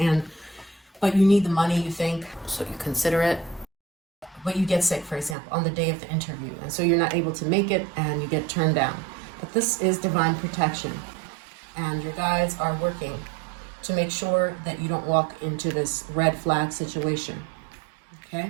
but you need the money, you think, so you consider it. But you get sick, for example, on the day of the interview, and so you're not able to make it and you get turned down. But this is divine protection, and your guides are working to make sure that you don't walk into this red flag situation, okay,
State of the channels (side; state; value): left; drops out; at 5.4 s